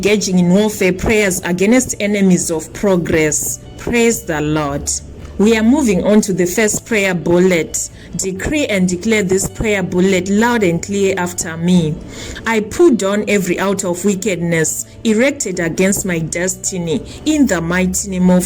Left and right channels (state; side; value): identical; both; correlation 1.00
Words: in warfare prayers against enemies of progress. Praise the Lord. We are moving on to the first prayer bullet. Decree and declare this prayer bullet loud and clear after me. I pull down every altar of wickedness erected against my destiny in the mighty name